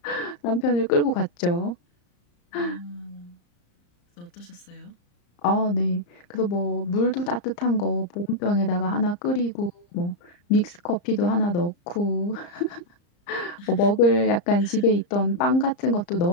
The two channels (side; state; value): right; late; 34 ms